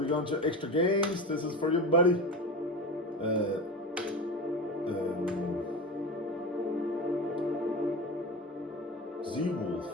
going to extra games. This is for you, buddy. ZeeWolf.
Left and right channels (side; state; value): both; normal; correlation 0.26